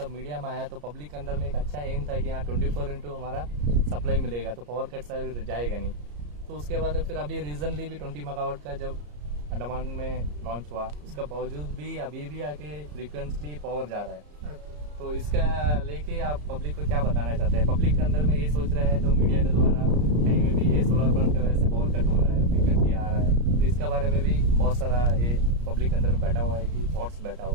मीडिया में आया तो पब्लिक के अंदर में एक अच्छा एम था कि यहाँ 24/2 हमारा सप्लाई मिलेगा, तो पावर कट जाएगा नहीं। तो उसके बाद फिर अभी रीजनली भी 20 मेगावाट का जब अंडमान में लॉन्च हुआ, उसका बावजूद भी अभी भी आके फ्रीक्वेंटली पावर जा रहा है। तो इसका लेके आप पब्लिक को क्या बताना चाहते हैं? पब्लिक के अंदर में ये सोच रहा है जो मीडिया के द्वारा कहीं में भी ये सोलर प्लांट की वजह से पावर कट हो रहा है, फ्रीक्वेंटली आ रहा है, तो इसका बारे में भी बहुत सारा ये पब्लिक के अंदर में बैठा हुआ है कि थॉट्स बैठा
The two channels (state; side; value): late; left; 34 ms